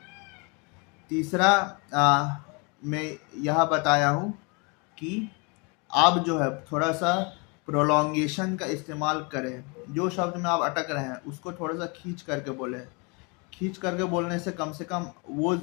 तीसरा मैं यह बताया हूँ कि आप जो है थोड़ा सा प्रोलॉन्गेशन का इस्तेमाल करें। जो शब्द में आप अटक रहे हैं उसको थोड़ा सा खींच करके बोलें। खींच करके बोलने से कम वो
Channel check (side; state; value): right; quieter; 31.4 dB